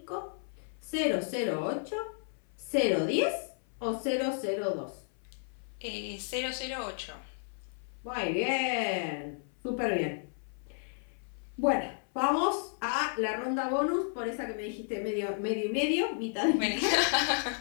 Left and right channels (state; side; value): silent; right; 56 dB below the other